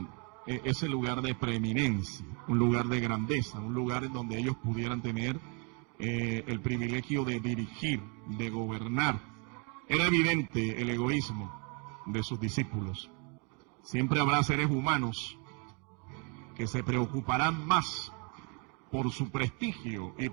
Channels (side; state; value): left; quieter; 34.4 dB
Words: ese lugar de preeminencia, un lugar de grandeza, un lugar en donde ellos pudieran tener el privilegio de dirigir, de gobernar. Era evidente el egoísmo de sus discípulos. Siempre habrá seres humanos que se preocuparán más por su prestigio y